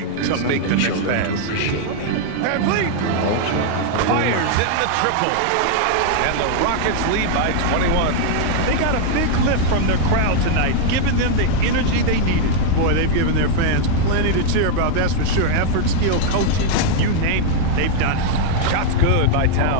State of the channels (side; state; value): both; different; correlation 0.00